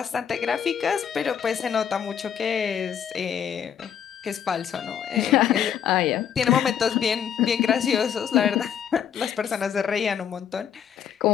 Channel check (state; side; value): quieter; right; 8.6 dB